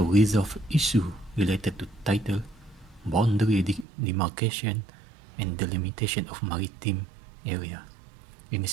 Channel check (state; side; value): drops out; left; at 3.9 s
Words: resolve issues related to title, boundary demarcation, and delimitation of maritime area in a